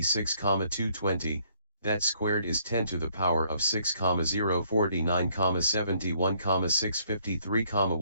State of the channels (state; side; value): inverted; both; correlation -0.66